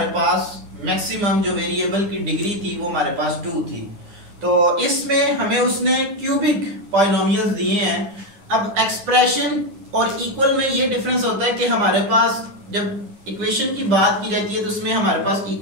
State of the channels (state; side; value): late; left; 10 ms